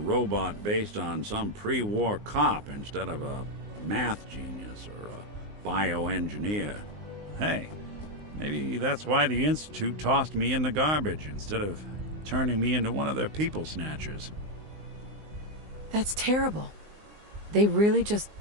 based on some pre-war cop instead of a math genius or a bioengineer. Hey, maybe that's why the Institute tossed me in the garbage instead of turning me into one of their people snatchers. That's terrible. They really just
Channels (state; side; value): late; left; 19 ms